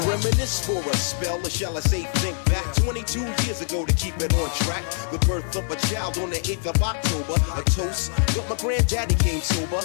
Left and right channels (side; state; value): right; silent; digital silence